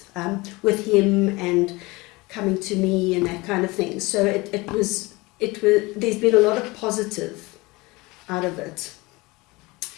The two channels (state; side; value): quieter; right; 23.2 dB